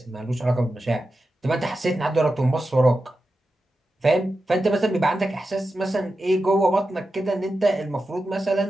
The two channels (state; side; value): normal; both; correlation 0.91